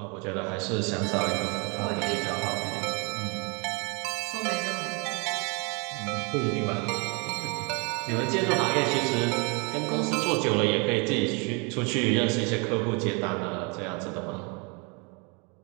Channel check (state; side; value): quieter; left; 32.3 dB